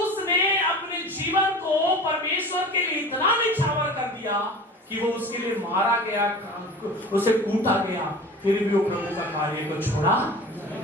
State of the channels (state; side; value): normal; both; correlation 0.38